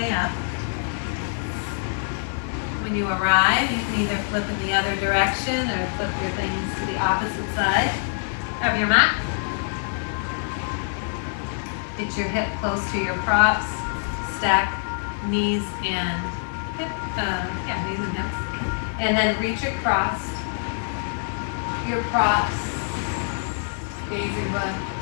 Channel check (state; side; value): silent; right; 62 dB below the other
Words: up. When you arrive, you can either flip in the other direction or flip your things to the opposite side of your mat. Get your hip close to your props. Stack knees and hips. And then reach across your props, gazing